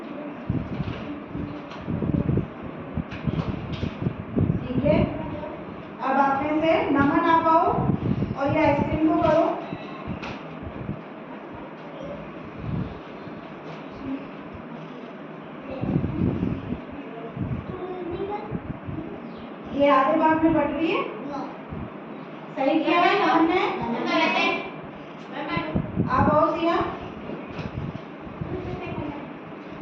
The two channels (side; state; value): both; identical; correlation 1.00